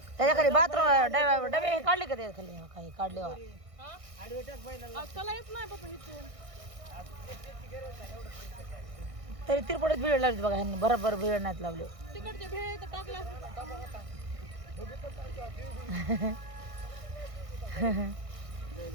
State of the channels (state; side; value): late; left; 1.6 ms